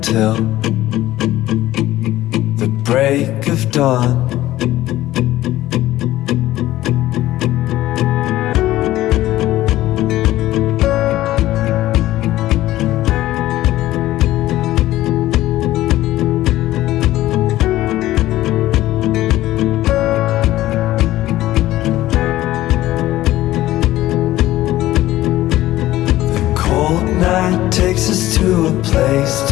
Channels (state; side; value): quieter; right; 15.4 dB